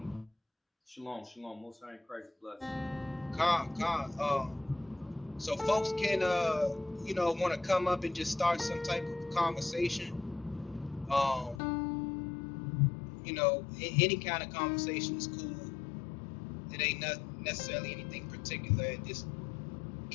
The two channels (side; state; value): right; drops out; at 11.6 s